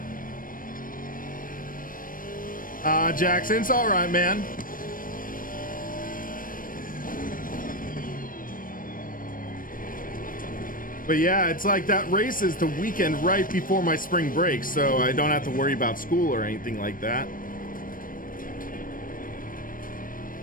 Jackson, it's all right, man. But yeah, it's like that race is the weekend right before my spring break, so I don't have to worry about school or anything like that.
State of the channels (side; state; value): right; late; 0.40 ms